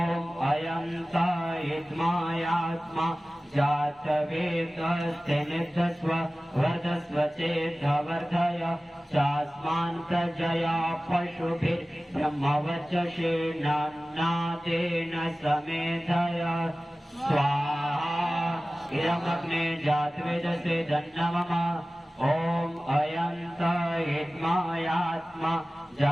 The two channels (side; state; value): both; normal; correlation 0.97